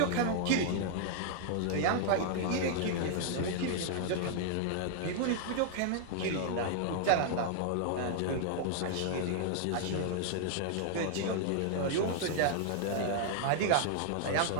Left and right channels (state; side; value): different; both; correlation -0.01